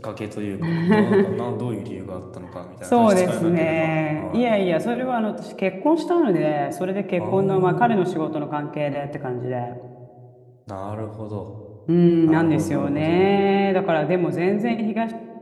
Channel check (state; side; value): identical; both; correlation 1.00